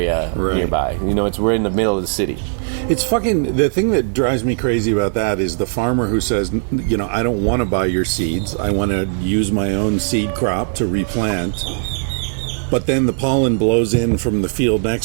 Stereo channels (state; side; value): silent; left; 67 dB below the other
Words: nearby. We're in the middle of the city. It's fucking, the thing that drives me crazy about that is the farmer who says, I don't want to buy your seeds. I want to use my own seed crop to replant. But then the pollen blows in from the field